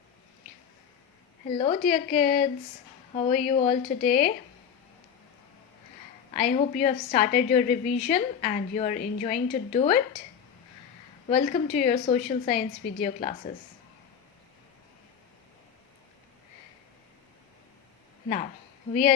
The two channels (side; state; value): right; quieter; 7.8 dB